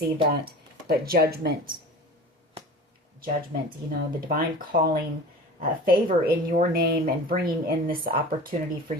that. But judgment. Judgment, you know, the divine calling, favor in your name and bringing in this opportunity for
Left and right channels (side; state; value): both; normal; correlation 0.37